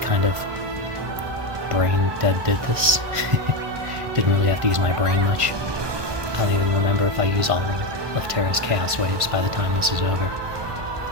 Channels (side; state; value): left; late; 1.5 ms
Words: kind of brain dead did this. Didn't really have to use my brain much. I don't even remember if I use all of Terra's Chaos Waves by the time this is over.